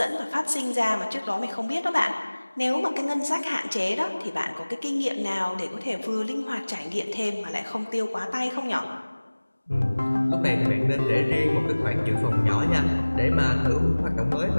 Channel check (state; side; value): inverted; both; correlation -1.00